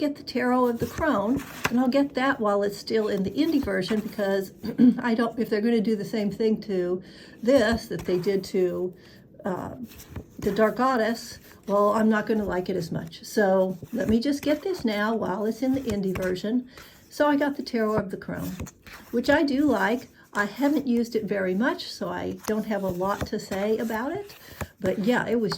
the Tarot of the Crone, and I'll get that while it's still in the indie version, because I don't, if they're going to do the same thing to this that they did to the Dark Goddess, well, I'm not going to like it as much. So let me just get this now while it's in the indie version. So I got the Tarot of the Crone, which I do like. I haven't used it very much, so I don't have a lot to say about it. But yeah, it was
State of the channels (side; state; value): both; identical; correlation 1.00